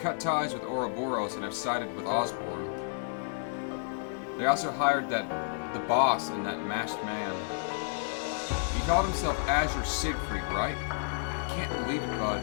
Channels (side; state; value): right; silent; digital silence